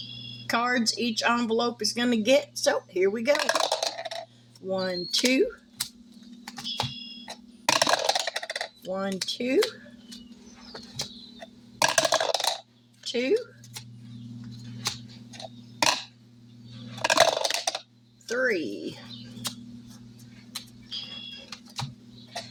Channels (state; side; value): identical; both; correlation 1.00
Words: cards each envelope is going to get. So here we go. 1, 2. 1, 2. 2. 3.